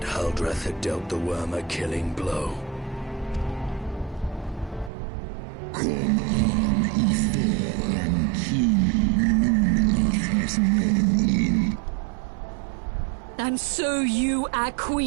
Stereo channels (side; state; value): left; drops out; at 4.9 s